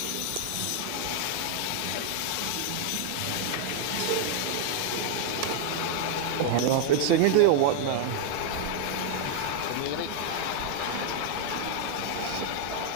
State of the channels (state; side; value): different; both; correlation 0.00